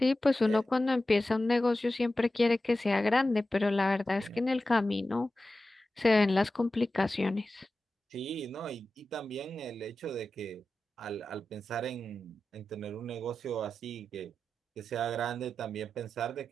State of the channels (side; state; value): both; normal; correlation 0.93